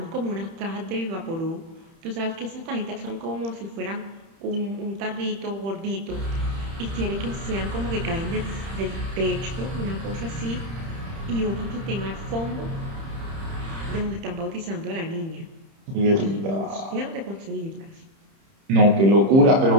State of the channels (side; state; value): left; late; 30 ms